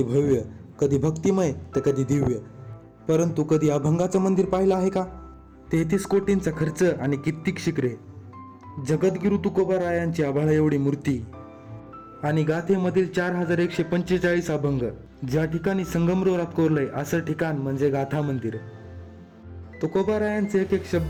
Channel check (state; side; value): identical; both; correlation 1.00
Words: भव्य, कधी भक्तिमय तर कधी दिव्य. परंतु कधी अभंगाचं मंदिर पाहिलं आहे का? 33 कोटींचा खर्च आणि कित्येक शिखरे, जगद्गुरु तुकोबारायांची आभाळा एवढी मूर्ती आणि गाथेमधील 4145 अभंग. ज्या ठिकाणी संगमरवरात कोरलंय असं ठिकाण म्हणजे गाथा मंदिर. तुकोबारायांचे एक एक